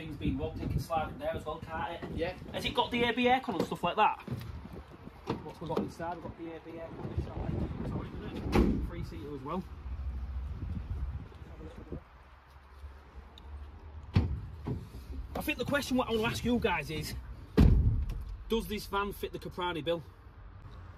being robbed, you can slide it there as well, can't it? Yeah. Has it got the AB aircon and stuff like that? What we've got inside, we've got the AB aircon on this side. Sorry, isn't it? 3-seater as well. I think the question what I want to ask you guys is, does this van fit the Caprani bill?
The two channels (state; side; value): identical; both; correlation 1.00